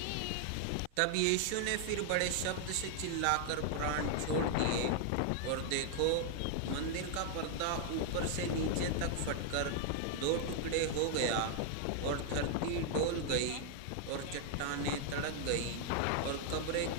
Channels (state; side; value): different; both; correlation 0.00